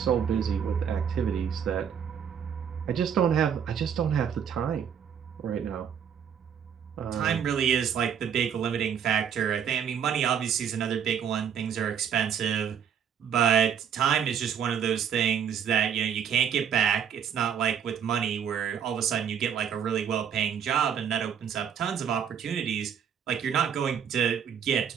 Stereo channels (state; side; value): quieter; left; 8.1 dB